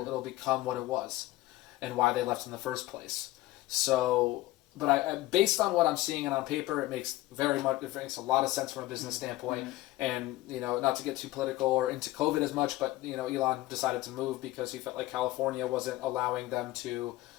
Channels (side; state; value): right; quieter; 17.8 dB